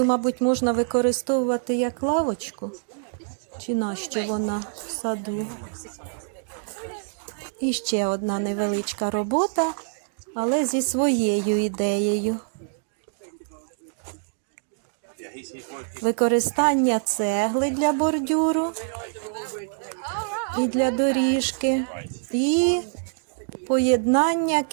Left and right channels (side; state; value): left; silent; digital silence